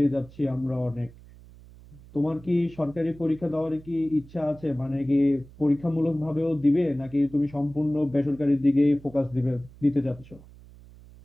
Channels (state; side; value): noise; right; hum, 21 dB below the sound